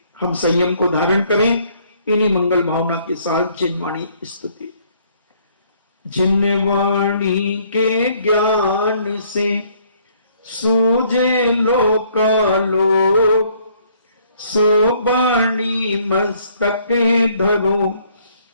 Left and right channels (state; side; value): inverted; both; correlation -0.64